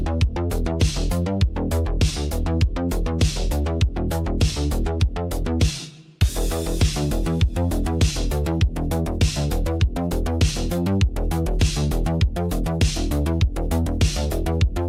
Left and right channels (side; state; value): both; identical; correlation 1.00